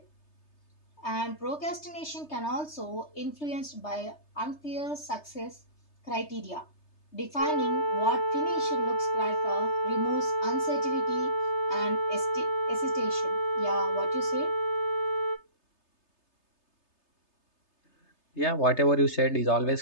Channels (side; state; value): right; late; 3.3 ms